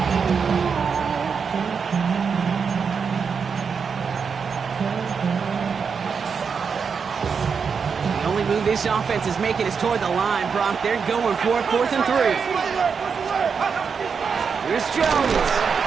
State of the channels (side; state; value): left; quieter; 6.0 dB